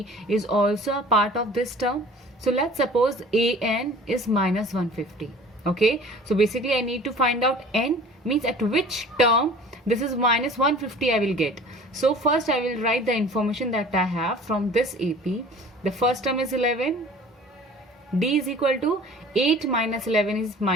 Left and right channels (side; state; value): both; normal; correlation 0.46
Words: is also a part of this term. So let's suppose AN is minus 150. Okay. So basically I need to find out N means at which term this is minus 150 I will get. So first I will write the information that I have from this AP. The first term is 11. D is equal to 8 minus 11 is